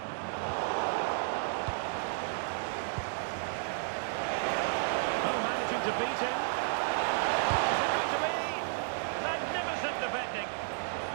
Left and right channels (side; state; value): left; silent; 56 dB below the other